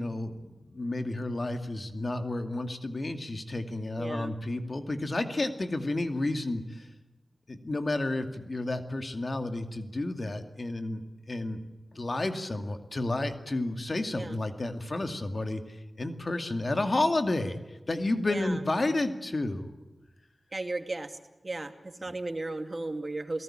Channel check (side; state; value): both; normal; correlation 0.96